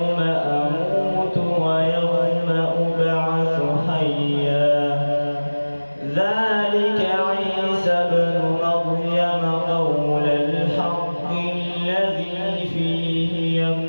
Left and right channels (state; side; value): inverted; both; correlation -1.00